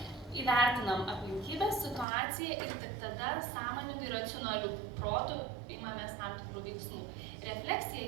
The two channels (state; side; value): drops out; left; at 2.1 s